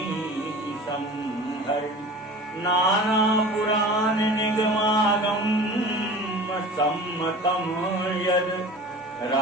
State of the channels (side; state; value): both; normal; correlation 0.39